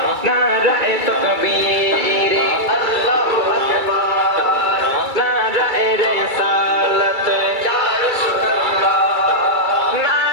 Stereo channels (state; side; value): late; left; 2.3 ms